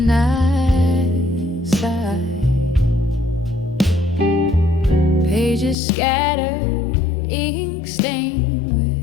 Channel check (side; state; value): right; drops out; at 5.8 s